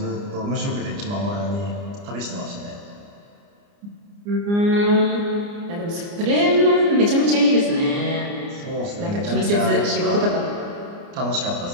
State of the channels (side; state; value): left; late; 29 ms